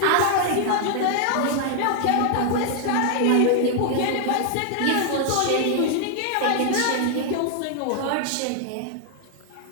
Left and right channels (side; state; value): both; different; correlation 0.00